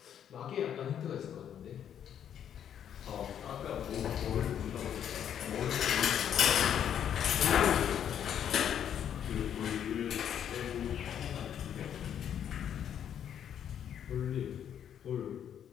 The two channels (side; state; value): right; quieter; 9.3 dB